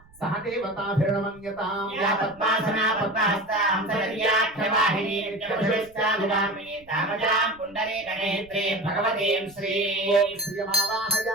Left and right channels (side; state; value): right; noise; rumble, 27 dB below the sound